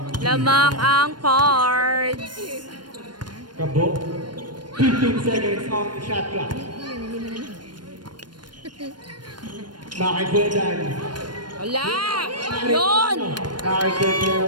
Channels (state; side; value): late; left; 0.71 ms